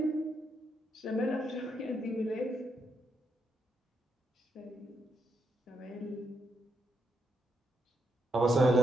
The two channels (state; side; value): normal; both; correlation 0.80